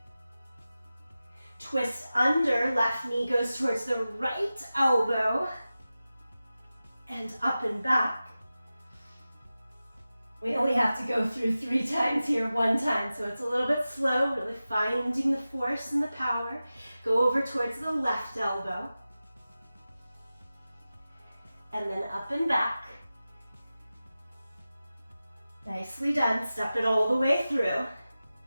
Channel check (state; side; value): inverted; both; correlation -0.95